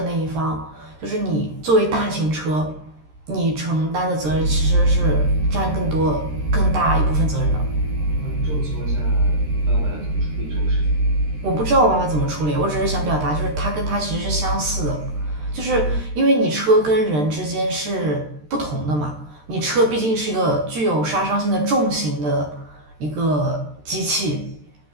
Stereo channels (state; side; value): late; left; 13 ms